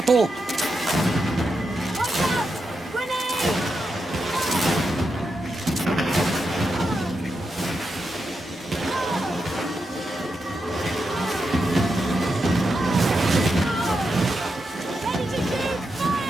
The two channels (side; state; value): both; normal; correlation 0.86